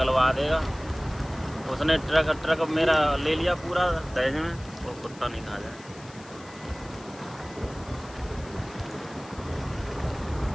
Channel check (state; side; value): noise; left; hiss, 21 dB below the sound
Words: देगा। उसने ट्रक मेरा ले लिया पूरा दहेज में, वो कुत्ता नहीं खा जाए।